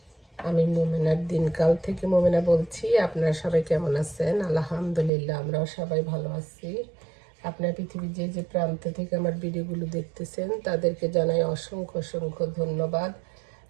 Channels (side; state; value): left; drops out; at 5.1 s